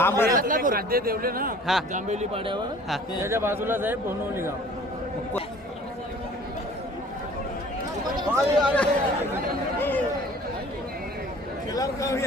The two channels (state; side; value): normal; both; correlation 0.49